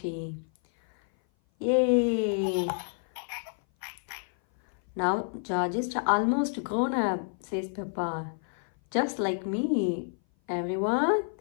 Yay. Now George is almost grown up, says Peppa. Just like me. Everyone,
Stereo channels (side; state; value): right; silent; 57 dB below the other